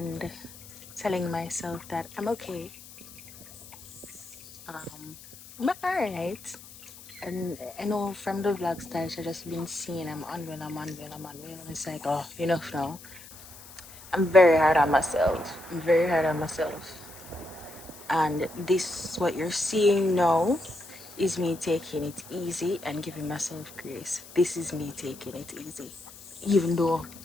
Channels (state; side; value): noise; left; hiss, 18 dB below the sound